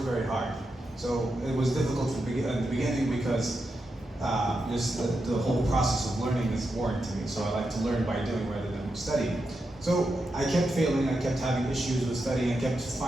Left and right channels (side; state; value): both; normal; correlation 0.86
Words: very hard. So it was difficult at the beginning because just the whole process of learning is boring to me. So I like to learn by doing rather than studying. So I kept failing, I kept having issues with studying, I kept